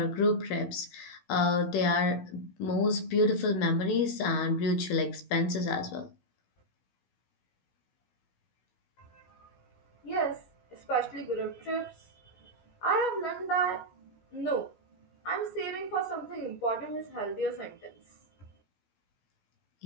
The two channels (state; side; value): late; right; 16 ms